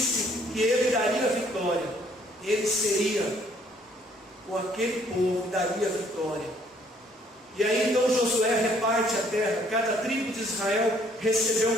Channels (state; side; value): normal; both; correlation 0.63